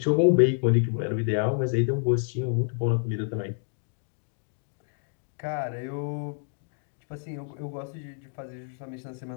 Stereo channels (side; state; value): right; silent; 59 dB below the other